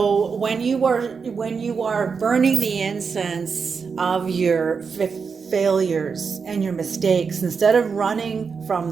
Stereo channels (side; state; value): left; quieter; 5.6 dB